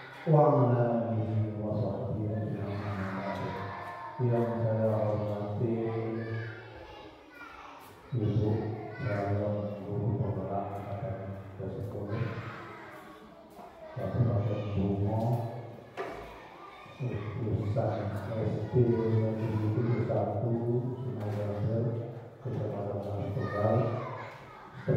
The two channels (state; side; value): identical; both; correlation 1.00